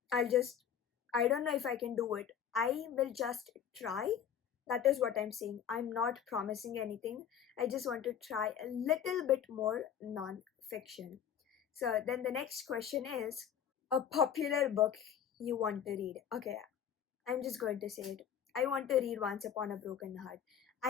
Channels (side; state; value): right; quieter; 8.9 dB